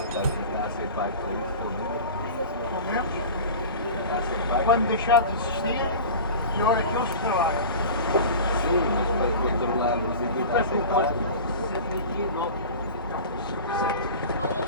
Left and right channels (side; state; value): both; inverted; correlation -0.34